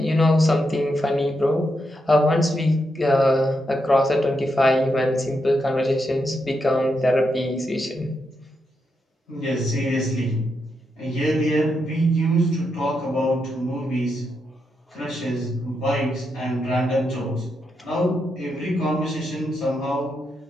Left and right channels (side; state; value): both; normal; correlation 0.83